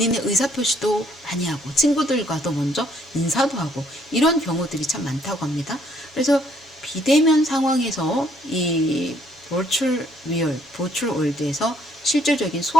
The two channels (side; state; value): both; normal; correlation 0.66